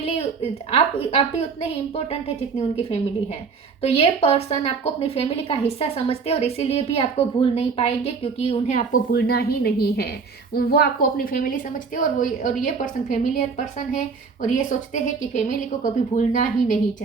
आप भी उतने ही इम्पोर्टेंट है जितनी उनकी फैमिली है। तो ये पर्सन आपको अपनी फैमिली का हिस्सा समझते हैं और इसीलिए भी आपको भूल नहीं पाएंगे, क्योंकि उन्हें आपको भूलना ही नहीं है। वो आपको अपनी फैमिली समझते हैं और ये पर्सन फैमिलियर पर्सन है और ये सोचते हैं कि फैमिली को कभी भूलना ही नहीं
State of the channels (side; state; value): left; quieter; 5.2 dB